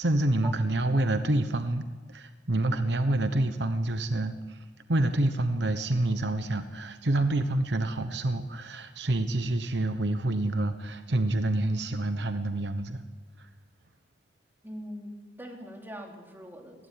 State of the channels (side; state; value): both; normal; correlation 0.81